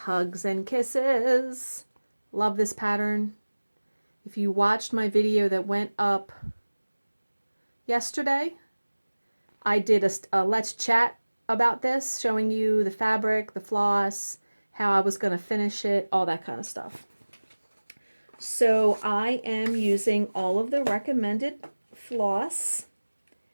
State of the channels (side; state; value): both; inverted; correlation -1.00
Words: and Kisses. Love this pattern. If you watched my video that went up yesterday, I did a let's chat about this, showing you the fabric, the floss, how I was going to finish it, all that kind of stuff. So I am using all of the recommended floss.